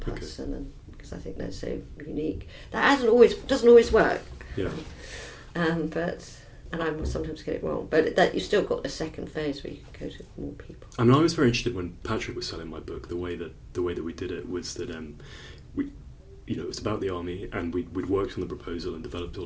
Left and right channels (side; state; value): both; identical; correlation 1.00